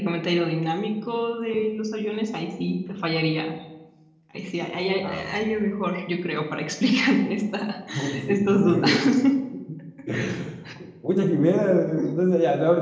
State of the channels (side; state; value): both; identical; correlation 1.00